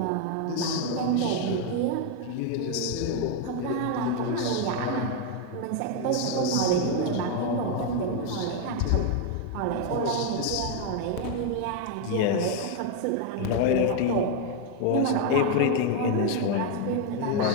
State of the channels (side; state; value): both; different; correlation 0.01